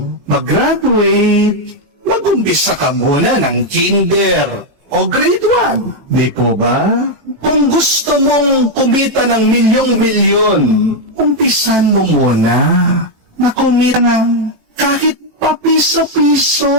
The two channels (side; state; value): left; late; 18 ms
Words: mag-graduate, mag-umpisa ka muna ng kinder o grade 1. Di po ba? Kung gusto mong kumita ng milyong-milyon, umpisan mo muna na kumita ng kahit papiso-piso.